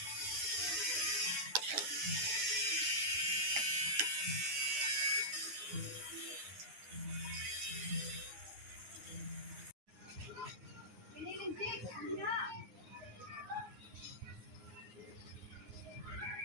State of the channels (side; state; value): left; late; 9.6 ms